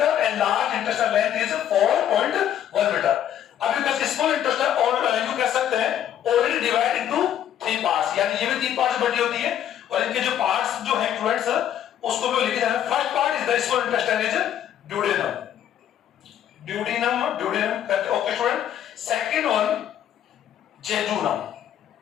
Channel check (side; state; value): right; quieter; 10.4 dB